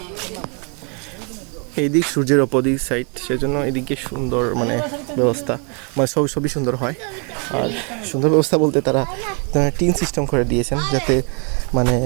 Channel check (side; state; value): left; quieter; 35.7 dB